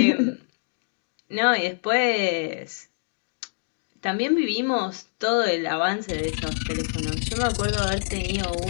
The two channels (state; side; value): silent; right; digital silence